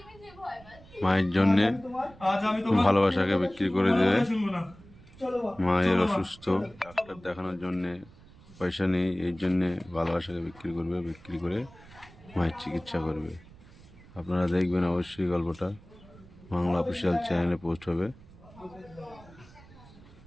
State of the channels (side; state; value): right; noise; rumble, 22 dB below the sound